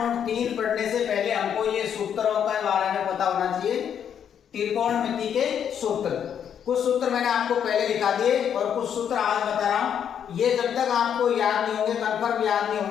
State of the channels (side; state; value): right; quieter; 8.6 dB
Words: पढ़ने से पहले हमको ये सूत्रों के बारे में पता होना चाहिए। त्रिकोणमिति के सूत्र, कुछ सूत्र मैंने आपको पहले दिखा दिए और कुछ सूत्र आज बता रहा हूँ। ये जब तक आपको याद नहीं होंगे, कंफर्म याद नहीं